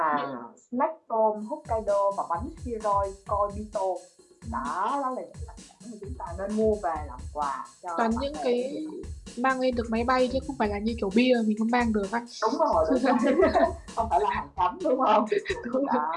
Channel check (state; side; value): identical; both; correlation 1.00